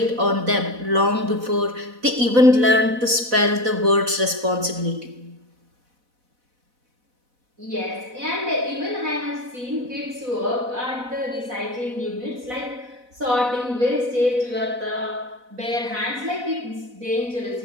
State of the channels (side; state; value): left; late; 4.0 ms